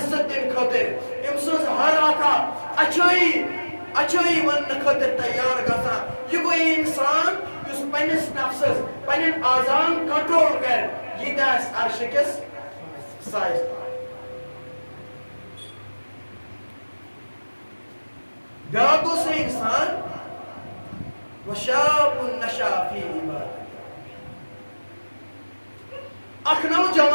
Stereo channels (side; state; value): both; inverted; correlation -1.00